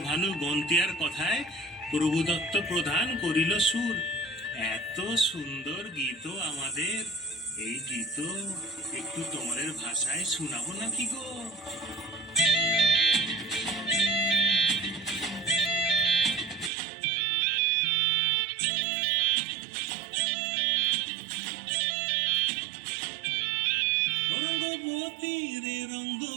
ভানু গন্তিয়ার কথায় প্রভুদত্ত প্রধান করিল সুর। এত সুন্দর গীত আমাদের, এই গীত একটু তোমাদের ভাষায় শোনাবো নাকি গো? রঙ্গবতী রে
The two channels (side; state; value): left; drops out; at 16.7 s